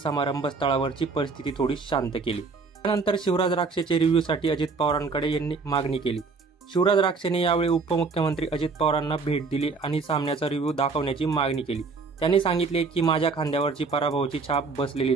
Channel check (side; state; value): left; quieter; 4.4 dB